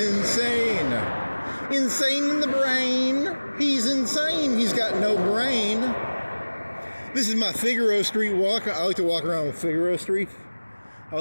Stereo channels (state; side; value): inverted; both; correlation -1.00